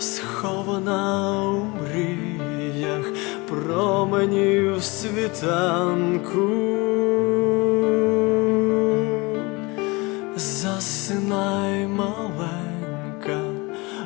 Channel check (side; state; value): right; quieter; 25.2 dB